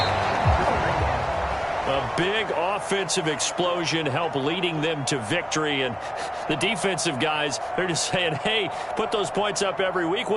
A big offensive explosion helped leading them to victory, and the defensive guys, they're just saying, hey, put those points up every week,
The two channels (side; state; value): both; identical; correlation 1.00